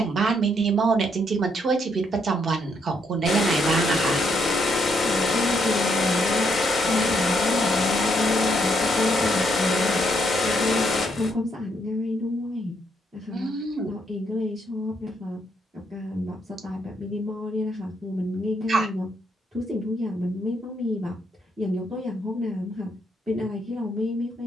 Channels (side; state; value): both; normal; correlation 0.74